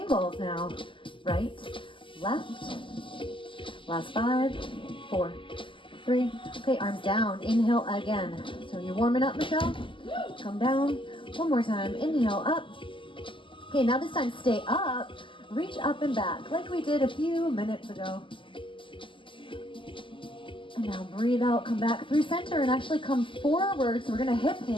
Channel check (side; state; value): right; late; 0.25 ms